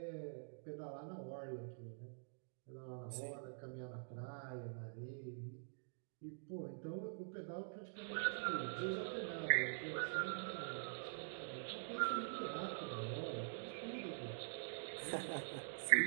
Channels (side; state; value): left; silent; digital silence